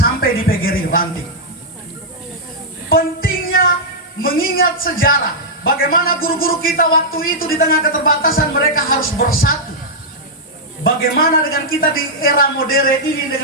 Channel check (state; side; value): normal; both; correlation -0.07